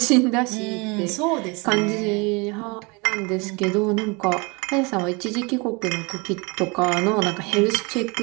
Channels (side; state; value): left; quieter; 28.7 dB